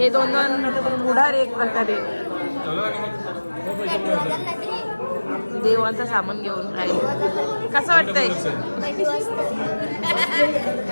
दोन पुढार एक प्रकारे देवांचं सामान घेऊन राहिले. कसं वाटतंय?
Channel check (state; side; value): inverted; both; correlation -1.00